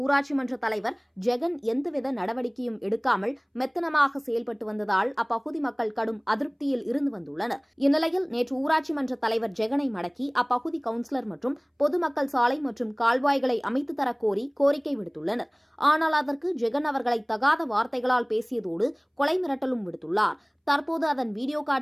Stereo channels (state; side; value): identical; both; correlation 1.00